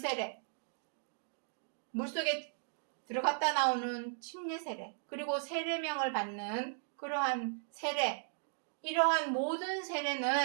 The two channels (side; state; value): left; silent; digital silence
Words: 물속에 들어갔다 나오는 침례 세례, 그리고 세례명을 받는 그러한 세례, 이러한 모든